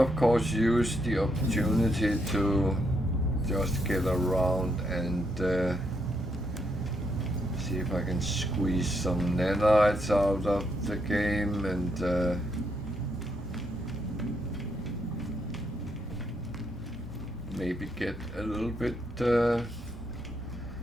of course use the opportunity to just get around and see if I can squeeze some nanites out of the game and maybe get a little bit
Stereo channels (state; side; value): normal; both; correlation 0.77